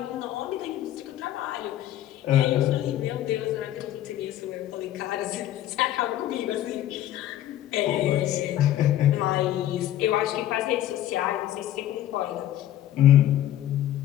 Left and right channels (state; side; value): quieter; right; 12.6 dB